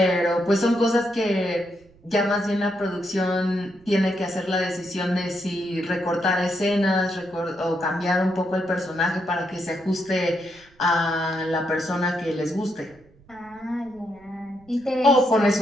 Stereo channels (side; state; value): right; noise; rumble, 29 dB below the sound